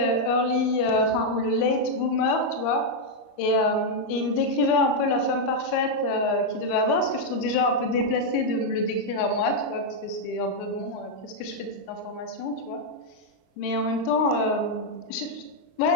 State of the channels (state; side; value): late; right; 22 ms